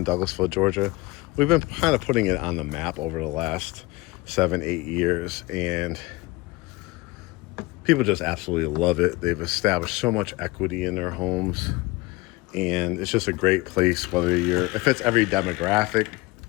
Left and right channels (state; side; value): quieter; right; 22.1 dB